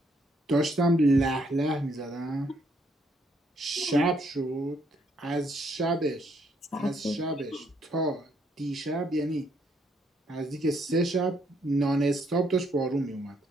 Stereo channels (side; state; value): both; normal; correlation 0.71